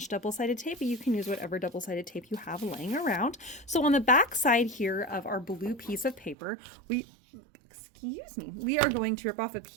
double-sided tape, but you can use whatever double-sided tape you have laying around. So on the back side here of our blue piece of paper, we are going to rip off a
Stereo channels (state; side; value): drops out; left; at 6.4 s